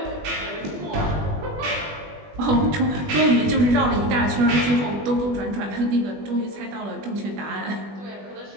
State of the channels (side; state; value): left; late; 20 ms